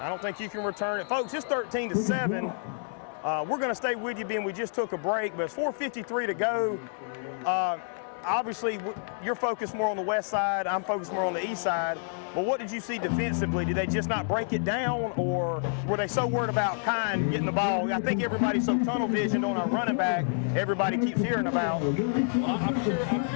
don't think you can return it. Folks, it's 13-7. We're going to stay with you, being we just took a break, but it's 4:53 to go. Obviously, you're focused more on the west side. I'm focused more on the east side. But what did you see defensively? Did they just not break it down, or were they so worried about Kine getting the ball? I think everybody's so tunnel visioned on a running back, everybody keeps hearing about. Well, I'm sure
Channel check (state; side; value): silent; right; 59 dB below the other